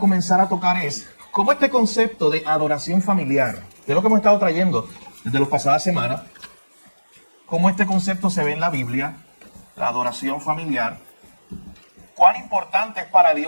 a tocar es cómo este concepto de adoración familiar, que es lo que hemos estado trayendo desde las pasadas semanas, cómo este concepto se ve en la Biblia, la adoración familiar, cuán importante es para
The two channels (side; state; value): both; inverted; correlation -1.00